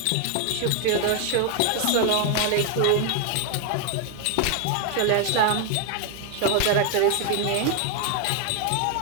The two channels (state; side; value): different; both; correlation 0.01